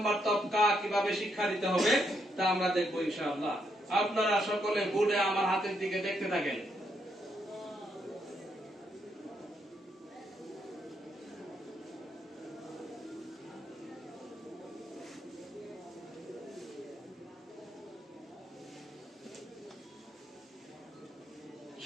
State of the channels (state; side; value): normal; both; correlation 0.77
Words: তবকা কিভাবে শিক্ষা দিতে হবে তা আমরা দেখব ইনশাআল্লাহ। আপনারা সকলে বোর্ডে আমার হাতের দিকে দেখতে থাকেন।